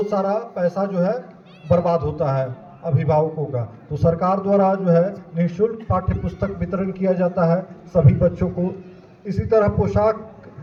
सारा पैसा जो है बर्बाद होता है अभिभावकों का। तो सरकार द्वारा जो है निःशुल्क पाठ्य पुस्तक वितरण किया जाता है सभी बच्चों को। इसी तरह पोशाक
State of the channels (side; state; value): both; identical; correlation 1.00